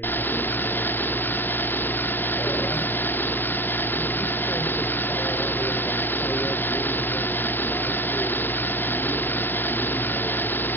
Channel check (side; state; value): right; late; 0.095 ms